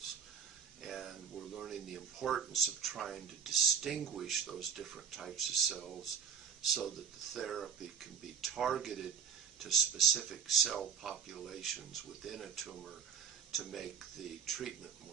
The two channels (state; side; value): quieter; left; 7.0 dB